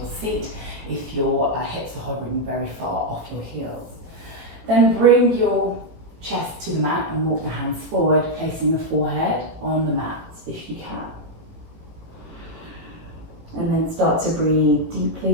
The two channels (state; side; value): late; left; 18 ms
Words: seat if your hips are hovering very far off your heels. Then bring your chest to the mat and walk the hands forward, placing the forehead on the mat if you can. And then start to breathe